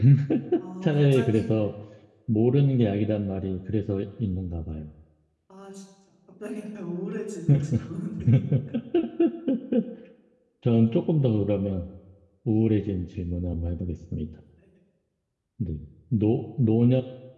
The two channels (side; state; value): both; identical; correlation 1.00